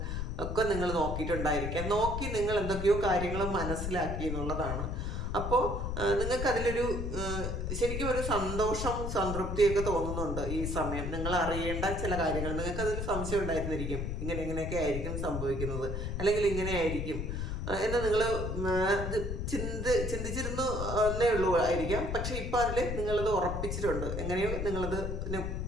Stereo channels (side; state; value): left; noise; rumble, 3 dB below the sound